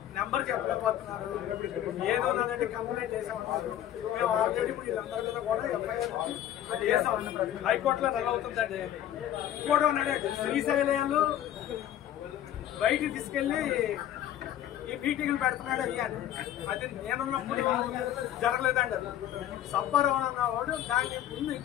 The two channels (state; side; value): quieter; right; 11.8 dB